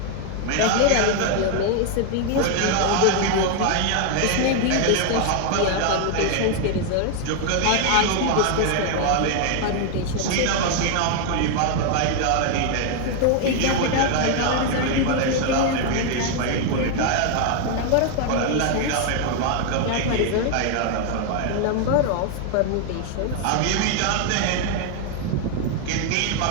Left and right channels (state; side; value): different; both; correlation 0.00